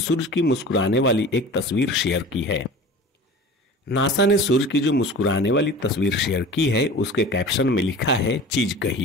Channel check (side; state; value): both; normal; correlation 0.38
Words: की मुस्कुराने वाली एक तस्वीर शेयर की है। नासा ने सूर्य की जो मुस्कुराने वाली तस्वीर शेयर की है, उसके कैप्शन में लिखा है, चीज